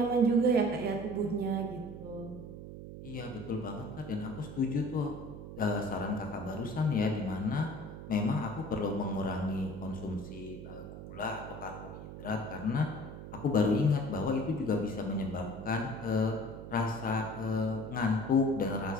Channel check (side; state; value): right; noise; hum, 11 dB below the sound